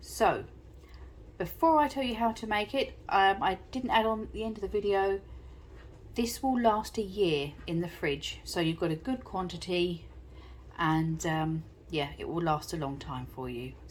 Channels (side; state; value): both; identical; correlation 1.00